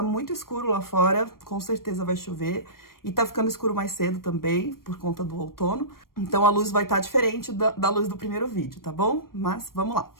muito escuro lá fora, com certeza vai chover. E tá ficando escuro mais cedo também, por conta do outono. Então a luz vai estar diferente da luz do primeiro vídeo, tá bom? Mas vamos lá.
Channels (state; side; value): late; right; 0.92 ms